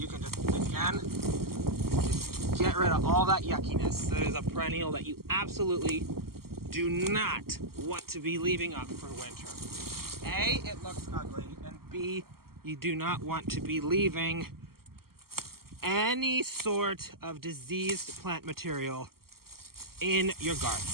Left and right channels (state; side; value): late; left; 0.93 ms